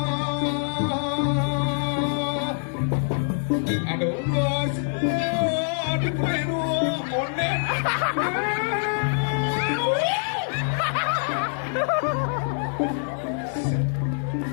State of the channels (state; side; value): silent; right; 62 dB below the other